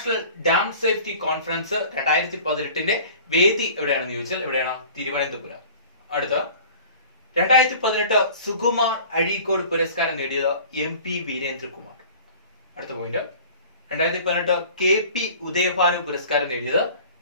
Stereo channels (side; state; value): both; inverted; correlation -0.44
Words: ഡാം സേഫ്റ്റി കോൺഫറൻസ് 2018 വേദി എവിടെയാണെന്ന് ചോദിച്ചാൽ എവിടെയാണ്? തിരുവനന്തപുരം. അടുത്ത 2018 സുകുമാർ അഴീക്കോട് പുരസ്കാരം നേടിയത് MP വീരേന്ദ്രകുമാർ. അടുത്ത പോയിന്റ് 2018 KP ഉദയഭാനു പുരസ്കാരം നേടിയത്